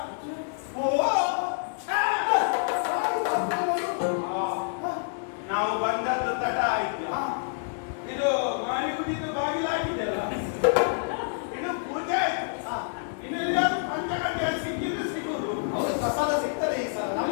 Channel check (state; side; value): silent; right; digital silence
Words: ನಾವು ಬಂದದ್ದು ತಡ ಆಯ್ತು. ಇದು ಮಾಡಿ ಕುಡಿದು ಬಾಗಿಲಾಗಿದೆಲ್ಲ, ಇನ್ನು ಪೂಜೆ ಆಯ್ತು. ಇನ್ನು ಎಲ್ಲಾದ್ರೂ ಪಂಚಗಂಟೆ ಸಿಕ್ಕಿದ್ರೆ ಸಿಗುದು. ಪ್ರಸಾದ ಸಿಗ್ತದೆ, ಈ ಸಲ